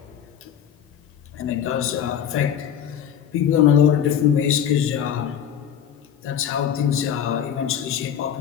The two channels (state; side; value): quieter; right; 9.0 dB